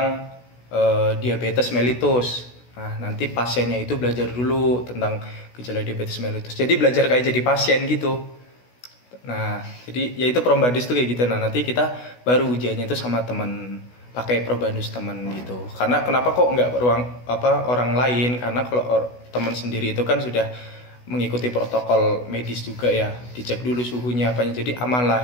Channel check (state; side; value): late; right; 16 ms